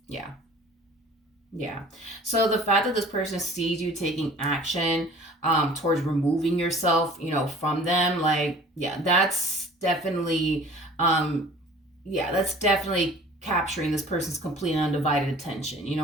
Yeah. Yeah. So the fact that this person sees you taking action towards removing yourself, from them, like, that's definitely, that's definitely capturing this person's complete and undivided attention. You know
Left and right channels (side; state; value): both; normal; correlation 0.47